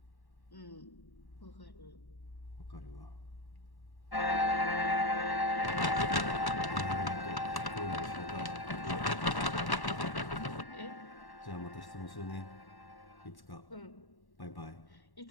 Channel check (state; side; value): late; right; 1.1 ms